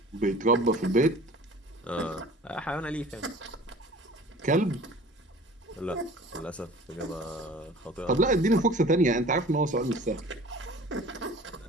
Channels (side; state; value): both; normal; correlation 0.45